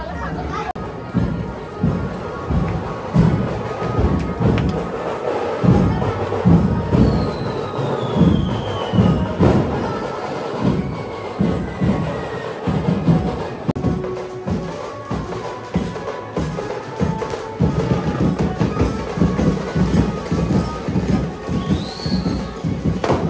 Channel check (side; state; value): both; identical; correlation 1.00